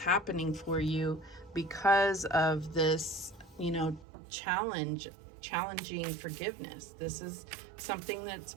happening for you because of this, challenging forgiveness. This is something that's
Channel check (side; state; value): left; drops out; at 4.0 s